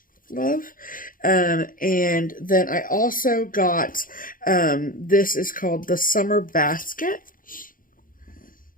love. And then I also got, this is called the Summer Basket.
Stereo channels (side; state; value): right; late; 0.40 ms